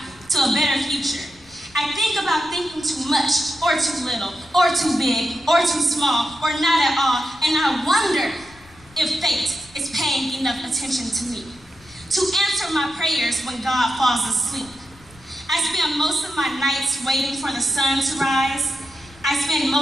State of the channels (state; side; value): noise; left; rumble, 25 dB below the sound